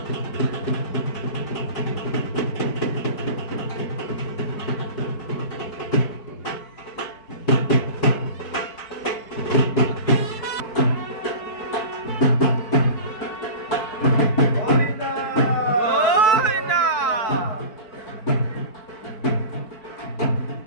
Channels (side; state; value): right; late; 4.5 ms